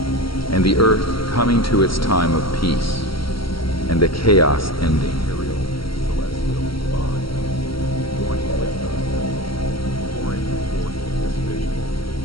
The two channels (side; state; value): right; late; 0.74 ms